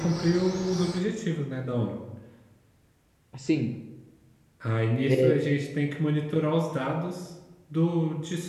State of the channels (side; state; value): both; identical; correlation 1.00